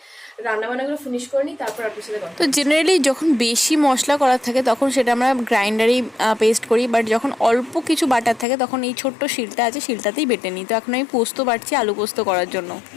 রান্নাবান্নাগুলো ফিনিশ করে নিই, তারপর আপনার সাথে কথা। তো জেনারেলি যখন বেশি মশলা করার থাকে তখন সেটা আমরা গ্রাইন্ডারেই পেস্ট করি, বাট যখন অল্প কিছু বাটার থাকে তখন এই ছোট্ট শিলটা আছে, শিলটাতেই বেটে নিই। তো এখন আমি পোস্ত বাটছি আলু পোস্ত করার জন্য।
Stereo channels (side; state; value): right; drops out; at 8.5 s